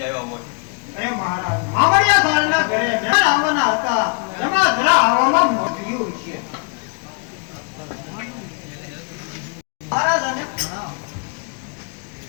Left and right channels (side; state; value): right; quieter; 38.8 dB